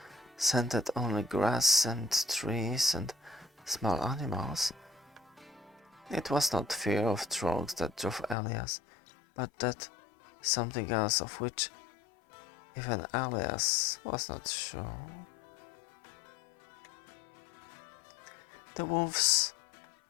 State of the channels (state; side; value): drops out; right; at 8.3 s